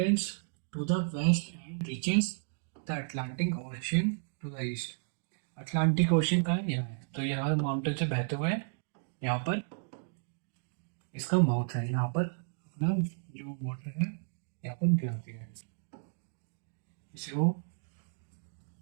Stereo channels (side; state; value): left; silent; digital silence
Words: to the west and reaches the Atlantic Ocean to the east. Atlantic Ocean का यहाँ है, तो यहाँ माउंटेन से बहते हुए यहाँ पर इसका माउथ है, यहाँ पर अपना जो वाटर है यहाँ पर गिराती है इसे वो